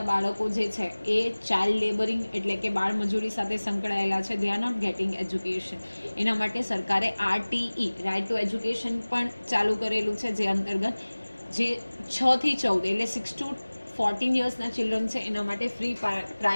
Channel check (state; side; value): inverted; both; correlation -1.00